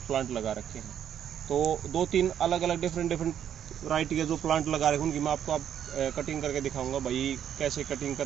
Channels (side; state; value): left; quieter; 9.5 dB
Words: प्लांट लगा रखे हैं। तो 2-3 अलग अलग डिफरेंट वैरायटी के जो प्लांट लगा रखे हैं, उनकी मैं आपको कटिंग करके दिखाऊंगा भाई कैसे कटिंग